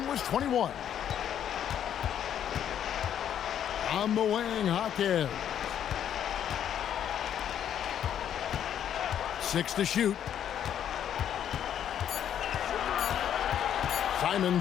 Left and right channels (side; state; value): right; quieter; 9.7 dB